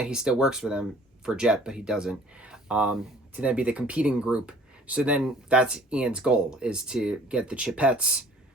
he still works for them for Jet, but he doesn't, to then be the competing group. So then that's Ian's goal, is to get the Chipettes,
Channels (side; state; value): both; normal; correlation 0.53